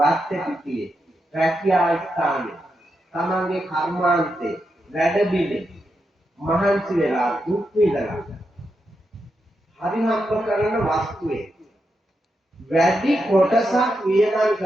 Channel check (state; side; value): normal; both; correlation 0.85